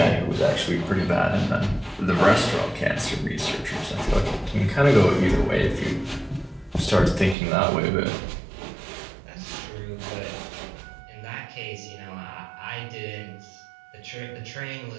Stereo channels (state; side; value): drops out; left; at 7.4 s